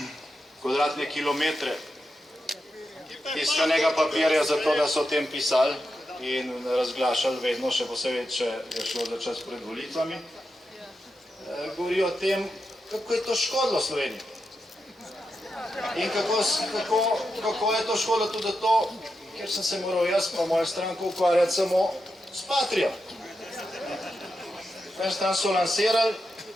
kvadratne kilometre tiskanega papirja za to, da so o tem pisali in razglašali vedno, še posebej, če je šlo za čas pred volitvami, govori o tem, kako je to škodilo Sloveniji. In kako je to škodilo tudi to, ker sem se moral jaz pa moja stranka ukvarjati samo s Patrijo. Prvi stran so lansirali,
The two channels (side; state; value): both; normal; correlation 0.87